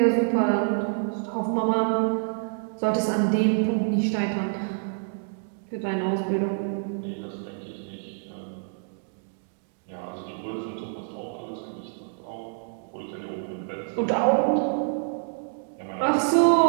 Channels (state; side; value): silent; left; digital silence